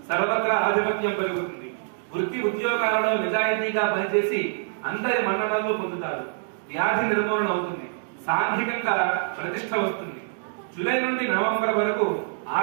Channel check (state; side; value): silent; left; digital silence